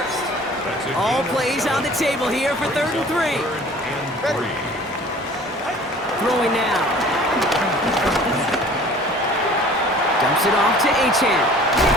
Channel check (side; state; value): both; normal; correlation 0.48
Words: All plays on the table here for 3rd and 3. Ready. Throwing now. Drops it off to Achan.